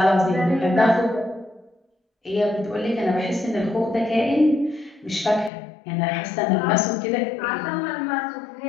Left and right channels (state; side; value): drops out; right; at 5.5 s